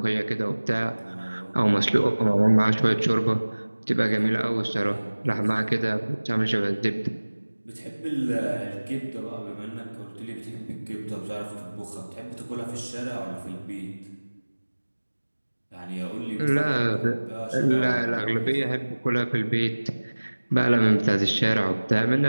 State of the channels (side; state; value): both; inverted; correlation -1.00